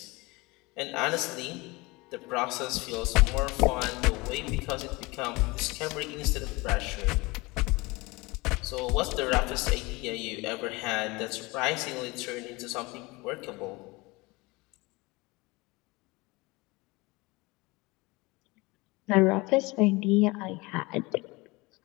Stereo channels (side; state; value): right; quieter; 23.9 dB